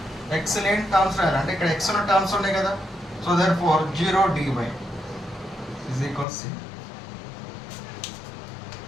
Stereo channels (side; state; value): right; drops out; at 6.2 s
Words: లేని టర్మ్స్ రాయాలి. అంటే ఇక్కడ ఎక్స్ ఉన్న టర్మ్స్ ఉన్నాయి కదా, so therefore 0 dy is equal C.